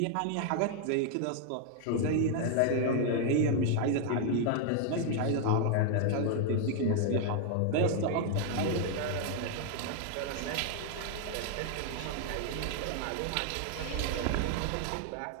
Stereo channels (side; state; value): both; different; correlation 0.00